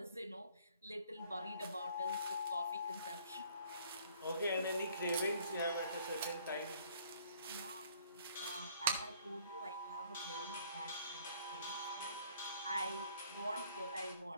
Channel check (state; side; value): inverted; both; correlation -0.59